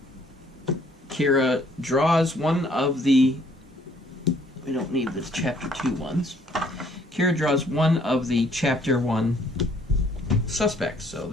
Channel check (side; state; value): both; normal; correlation 0.62